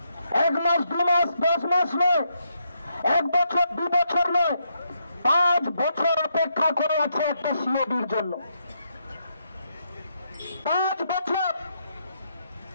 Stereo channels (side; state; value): both; inverted; correlation -0.79